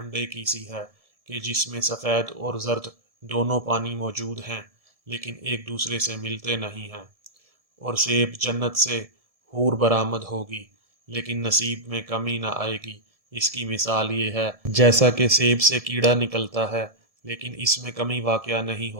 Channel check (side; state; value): left; late; 1.7 ms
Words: کی سی ہے کہ جس میں سفید اور زرد دونوں پانی موجود ہیں لیکن ایک دوسرے سے ملتے نہیں ہیں۔ اور سیب جنت سے حور برآمد ہوگی لیکن نصیب میں کمی نہ آئے گی۔ اس کی مثال یہ ہے جیسا کہ سیب سے کیڑا نکلتا ہے لیکن اس میں کمی واقع نہیں